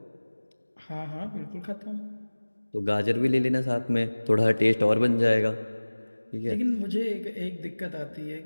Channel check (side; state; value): both; inverted; correlation -1.00